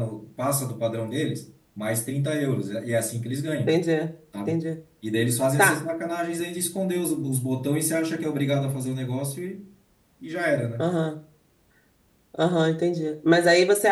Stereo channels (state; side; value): identical; both; correlation 1.00